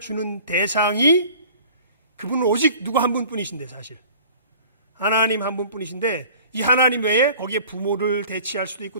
주는 대상이 그분은 오직 누구 한 분뿐이신데, 사실 하나님 한 분뿐이신데, 이 하나님 외에 거기에 부모를 대치할 수도 있고,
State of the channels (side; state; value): both; inverted; correlation -0.46